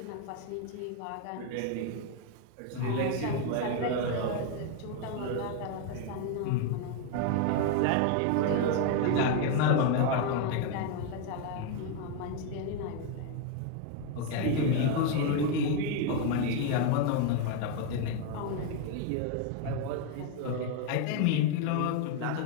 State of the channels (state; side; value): different; both; correlation 0.01